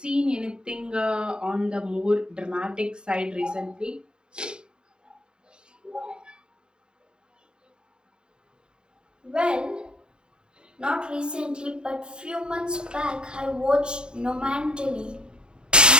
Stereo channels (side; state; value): left; late; 0.049 ms